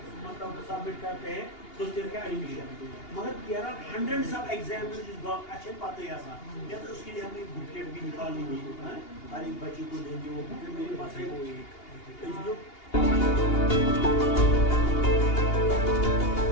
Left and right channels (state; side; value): late; right; 2.8 ms